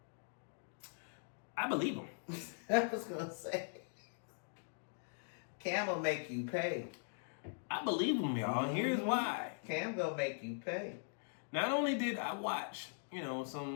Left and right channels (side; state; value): right; silent; digital silence